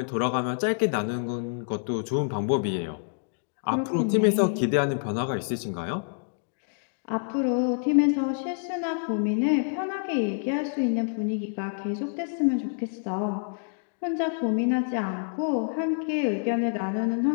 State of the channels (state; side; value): silent; right; digital silence